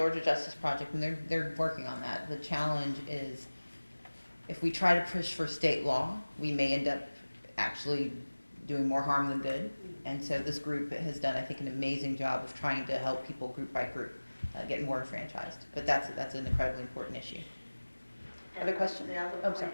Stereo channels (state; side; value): inverted; both; correlation -1.00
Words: Justice Project, and they're working on that. The challenge is if we try to push for state law, we may end up actually doing more harm than good. And so this group has done, I think, an amazing job of trying to help people group by group get more enfranchised. But that's an incredibly important issue. Other questions? The other Oh, point sorry.